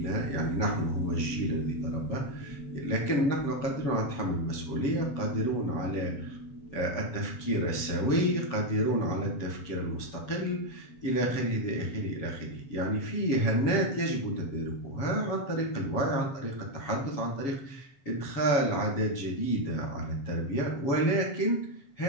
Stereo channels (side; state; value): right; late; 7.2 ms